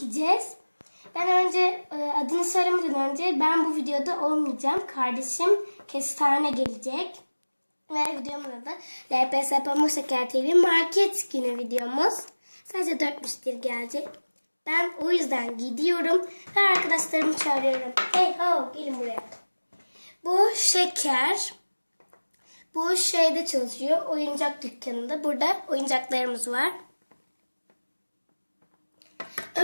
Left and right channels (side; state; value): both; inverted; correlation -1.00